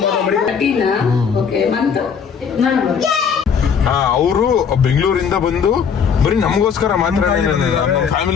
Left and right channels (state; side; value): quieter; right; 6.7 dB